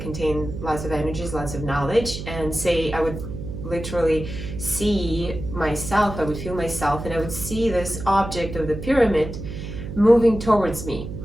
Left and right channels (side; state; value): right; noise; hum, 8 dB below the sound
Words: lots of energies, lots of knowledge, and say I would literally see myself, I would feel myself, and I would see this object of the pyramid moving towards me.